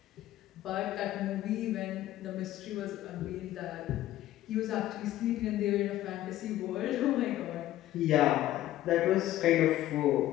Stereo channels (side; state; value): right; quieter; 14.1 dB